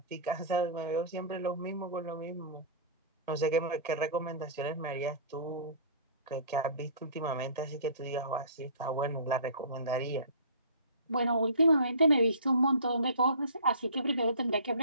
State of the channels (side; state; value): both; inverted; correlation -0.42